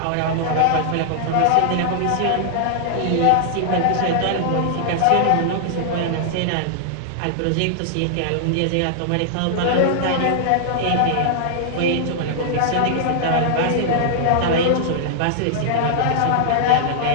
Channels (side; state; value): both; different; correlation -0.01